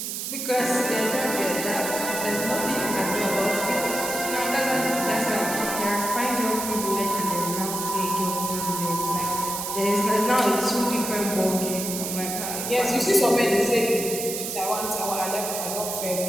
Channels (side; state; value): right; noise; hiss, 4 dB below the sound